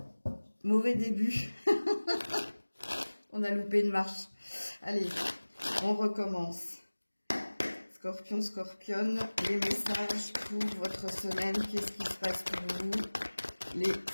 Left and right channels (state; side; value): inverted; both; correlation -1.00